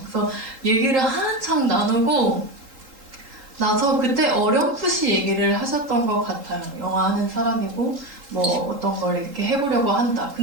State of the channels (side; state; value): left; late; 3.8 ms